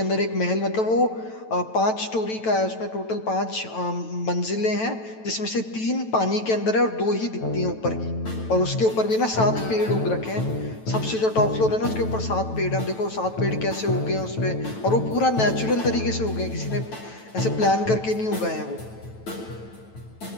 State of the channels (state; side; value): late; right; 9.1 ms